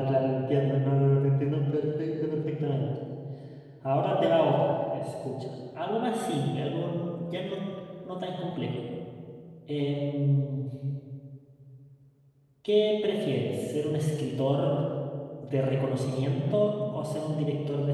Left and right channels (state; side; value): identical; both; correlation 1.00